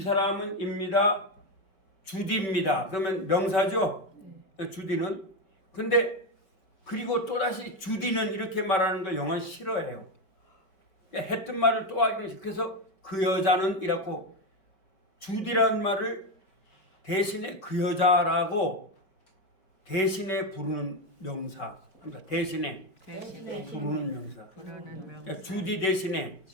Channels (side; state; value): right; late; 5.3 ms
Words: 사람은 입니다. 주디입니다. 그러면 명사죠. 주디는. 근데 그리고 또다시 주디는 이렇게 말하는 걸 영어는 싫어해요. 했던 말을 또 하기는 싫어. 그래서 그 여자는 이라고 주디라는 말을 대신에 그 여자라고 대신에 부르는 명사. 그러니까 대신에 부르는 명사. 그러니까 주디 대신에